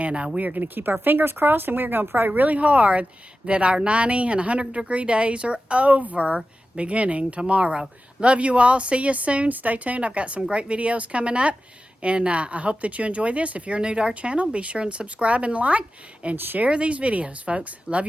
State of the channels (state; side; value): normal; both; correlation 0.93